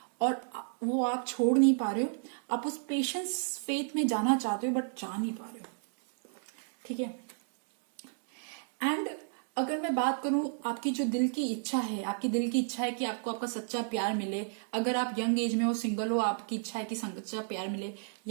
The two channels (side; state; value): left; silent; digital silence